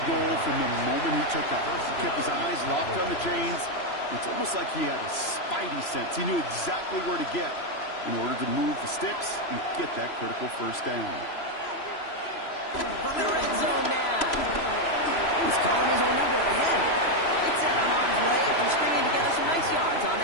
goal from the moment he took off. He kept his eyes locked on the chains. It's almost like he had a spidey sense. He knew exactly where to get in order to move the sticks and get that critical 1st down. From the red zone now. He's calling his own number again. It's out of harm's way after stringing together some nice yards on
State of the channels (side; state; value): right; late; 3.0 ms